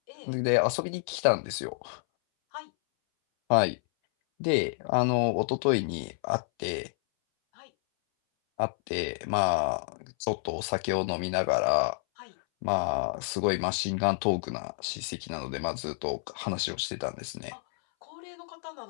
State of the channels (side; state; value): right; silent; 58 dB below the other